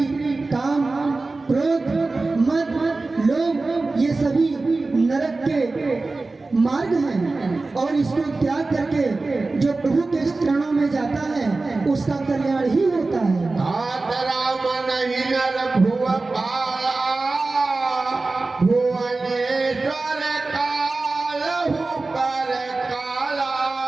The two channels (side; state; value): left; quieter; 3.5 dB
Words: काम क्रोध मद लोभ ये सभी नरक के मार्ग हैं, और इसको त्याग करके जो प्रभु के चरणों में जाता है उसका कल्याण ही होता है। राम नहीं नर भुव पाला भुवनेश्वर कालहु पर काला।